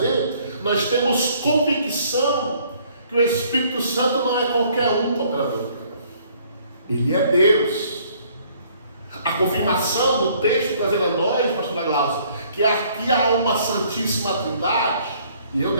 nós temos convicção que o Espírito Santo não é qualquer um operador. Ele é Deus. A confirmação do texto trazendo a nós, pastor Glaucio, que aqui há uma Santíssima Trindade, e eu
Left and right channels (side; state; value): both; inverted; correlation -0.61